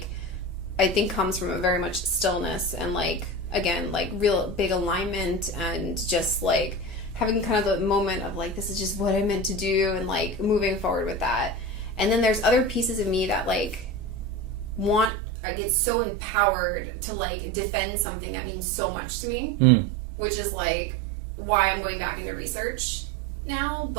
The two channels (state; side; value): drops out; left; at 15.1 s